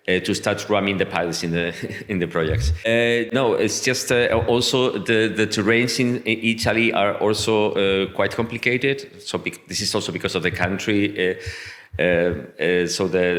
to start running the pilots in the projects. No, it's just also the terrains in Italy are also quite complicated. So this is also because of the country. So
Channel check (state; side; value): identical; both; correlation 1.00